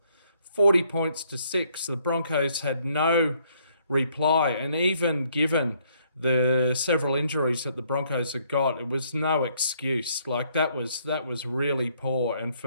40 points to 6. The Broncos had no reply, and even given the several injuries that the Broncos had got, it was no excuse. Like that was really poor, and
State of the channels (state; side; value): inverted; both; correlation -0.68